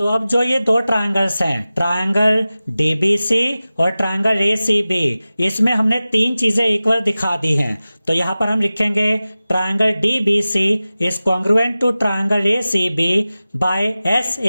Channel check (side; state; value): both; inverted; correlation -0.96